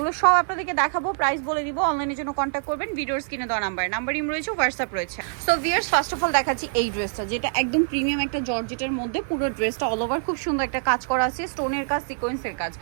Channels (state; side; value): silent; left; 56 dB below the other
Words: সব আপনাদেরকে দেখাবো, প্রাইস বলে দিব। অনলাইনের জন্য কন্ট্যাক্ট করবেন, ভিডিওর স্ক্রিনে দেওয়া নাম্বার ইম রয়েছে, হোয়াটসঅ্যাপ রয়েছে। So viewers, first of all দেখাচ্ছি এই ড্রেসটা, যেটা একদম প্রিমিয়াম একটা জর্জেটের মধ্যে। পুরো ড্রেসটা অল ওভার খুব সুন্দর একটা কাজ করা আছে, স্টোনের কাজ, সিকোয়েন্সের কাজ।